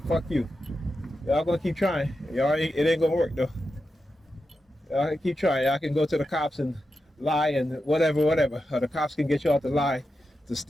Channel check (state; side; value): normal; both; correlation 0.89